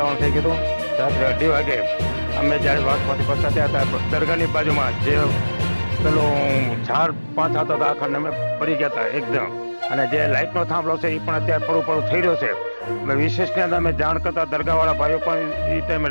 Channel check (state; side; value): inverted; both; correlation -1.00